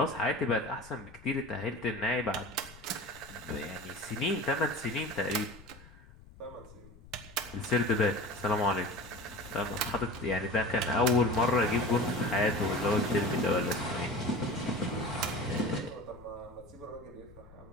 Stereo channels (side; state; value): left; noise; rumble, 21 dB below the sound